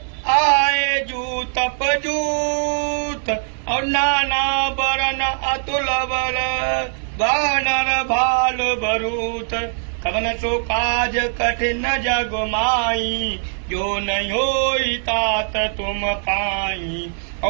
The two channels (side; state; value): left; silent; 65 dB below the other